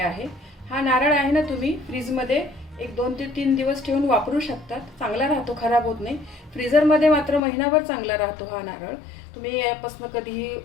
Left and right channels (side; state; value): right; drops out; at 7.4 s